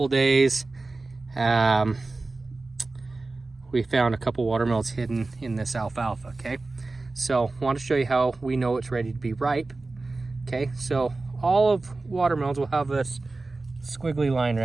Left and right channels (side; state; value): left; quieter; 3.4 dB